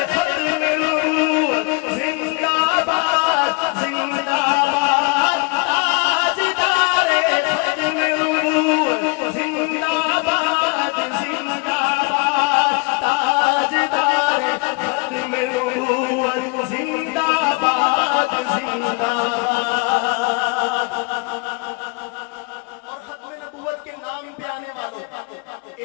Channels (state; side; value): quieter; right; 28.4 dB